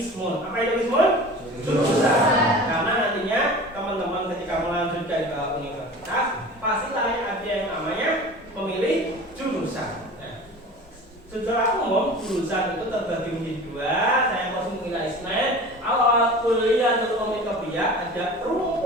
Apa itu ismun? Jurusan. Karena nantinya teman-teman ketika melanjutkan ke universitas pastilah ada yang namanya memilih jurusan. Secara umum jurusan itu terbagi menjadi dua. Saya masih mengira ismen. Awal Kulliyatul Ulumit Tabi'iyah ada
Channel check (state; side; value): normal; both; correlation 0.38